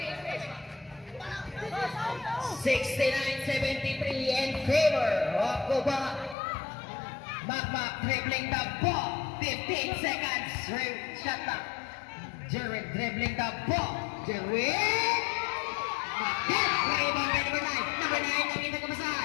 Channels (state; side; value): drops out; right; at 6.4 s